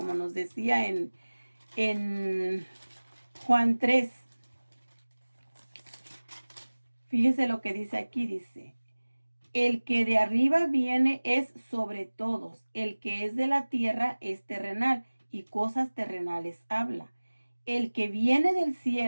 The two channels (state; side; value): inverted; both; correlation -1.00